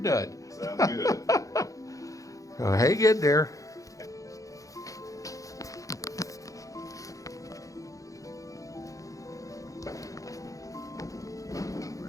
Sounds good. So hang in there.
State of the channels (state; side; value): late; right; 0.16 ms